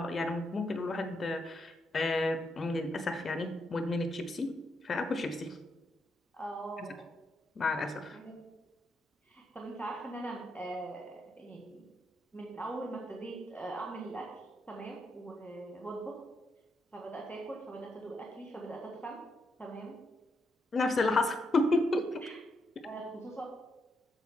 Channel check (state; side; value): normal; both; correlation 0.80